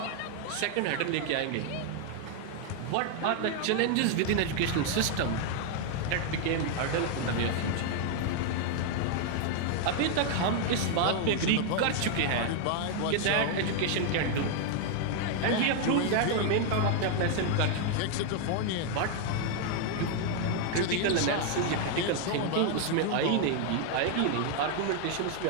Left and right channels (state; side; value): different; both; correlation 0.00